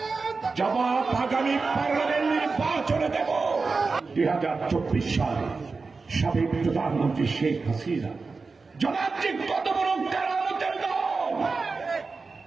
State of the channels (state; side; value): quieter; left; 4.3 dB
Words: জবাব আগামী পার্লামেন্ট নির্বাচনে দেব। 2024 সালে সাবেক প্রধানমন্ত্রী শেখ হাসিনা জবাব যে কত বড় কারামতের দল।